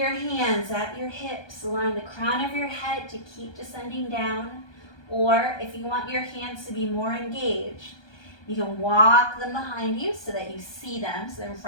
hands at your hips, allowing the crown of your head to keep descending down. Or if you want your hands to be more engaged, you can walk them behind you so that you see them, so they're in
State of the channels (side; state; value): right; late; 1.2 ms